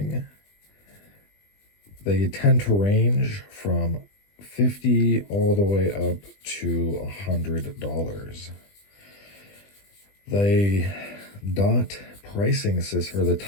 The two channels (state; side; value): late; right; 20 ms